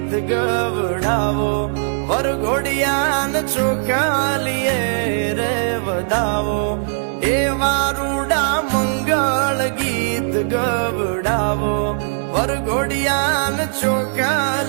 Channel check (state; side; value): silent; left; 66 dB below the other